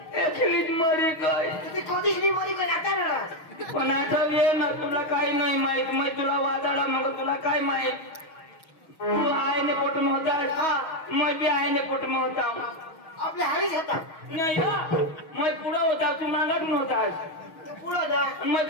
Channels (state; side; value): late; right; 6.3 ms